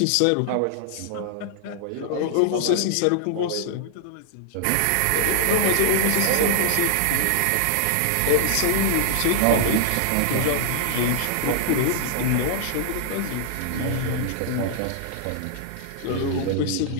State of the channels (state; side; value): different; both; correlation -0.01